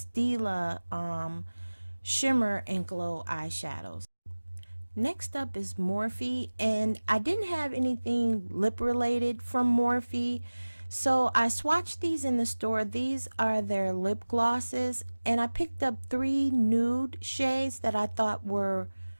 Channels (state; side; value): inverted; both; correlation -1.00